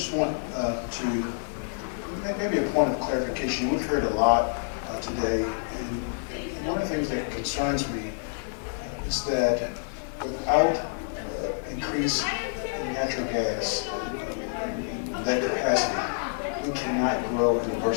want to maybe a point of clarification. We've heard a lot today, and one of the things that concerns me is that without increase in natural gas, that capacity, we cannot grow and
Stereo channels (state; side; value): silent; right; digital silence